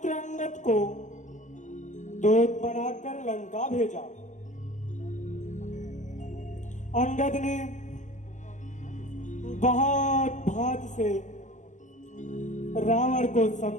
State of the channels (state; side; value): late; right; 0.35 ms